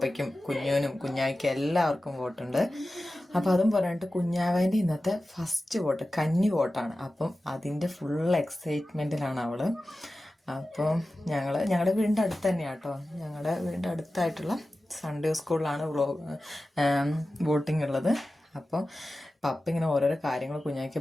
കുഞ്ഞുവിനും കുഞ്ഞായ്ക്കും എല്ലാവർക്കും വോട്ടുണ്ട്. അപ്പം അതും പറഞ്ഞിട്ട് കുഞ്ഞാവേൻ്റെ ഇന്നത്തെ ഫസ്റ്റ് വോട്ട് കന്നി വോട്ടാണ്. അപ്പം അതിൻ്റെ ഫുൾ എക്സൈറ്റ്മെൻറ്റിലാണ് അവള്. അപ്പം ഞങ്ങളുടെ വീടിൻ്റെ അടുത്ത് തന്നെയാണ് കേട്ടോ. ഞങ്ങളുടെ വീടിൻ്റെ അടുത്തായിട്ടുള്ള സൺഡേ സ്കൂളിലാണ് വോട്ടിംഗ് ഉള്ളത്. അപ്പോൾ പപ്പ ഇങ്ങനെ ഓരോരോ കാര്യങ്ങൾ കുഞ്ഞായ്ക്ക്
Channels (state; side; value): normal; both; correlation 0.95